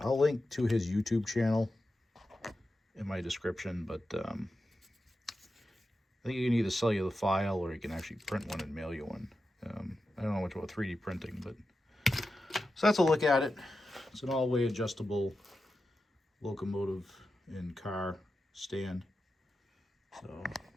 I'll link to his YouTube channel in my description, but I think he can either sell you the file or he can actually print one and mail you one. I don't know much about 3D printing, but so that's a look at it. It's an all-way adjustable locomotive and car stand. So,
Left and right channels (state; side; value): normal; both; correlation 0.91